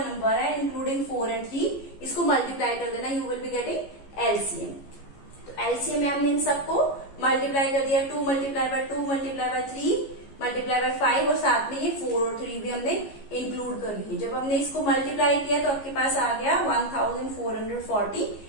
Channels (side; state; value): right; late; 15 ms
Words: है इंक्लूडिंग 4 एंड 3, इसको मल्टीप्लाई कर देना, you will be getting LCM. तो एलसीएम में हमने इन सबको मल्टीप्लाई कर दिया, 2 multiply by 2 multiply by 3 multiply by 5, और साथ में ये 4 और 3 भी हमने इंक्लूड कर लिए। जब हमने इसको मल्टीप्लाई किया तो आपके पास आ गया 1440